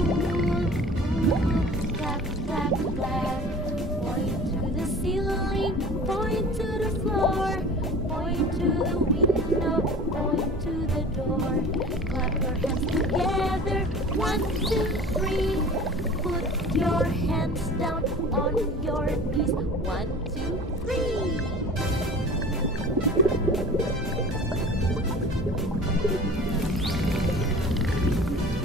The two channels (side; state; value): both; normal; correlation 0.41